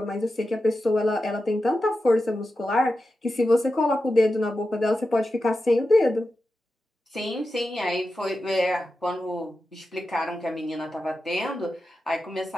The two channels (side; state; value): both; normal; correlation 0.91